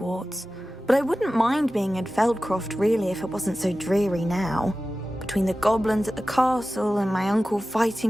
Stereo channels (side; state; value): both; normal; correlation 0.95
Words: but I wouldn't mind being in Feldcroft really if it wasn't so dreary now. Between the goblins at the castle and my uncle